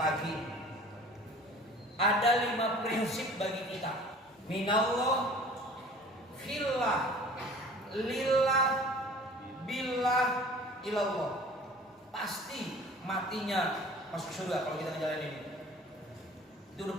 Ada 5 prinsip bagi kita. Minallah, fillah, lillah, billah, ilallah. Pasti matinya masuk surga kalau kita ngejalanin ini. Itu udah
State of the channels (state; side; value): normal; both; correlation 0.46